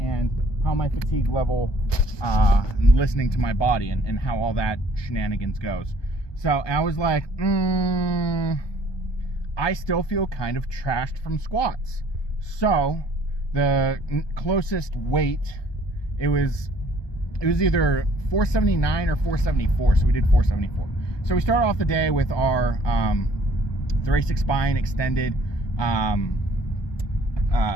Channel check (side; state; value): right; late; 1.2 ms